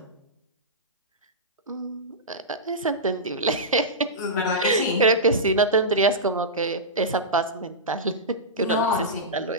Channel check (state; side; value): normal; both; correlation -0.15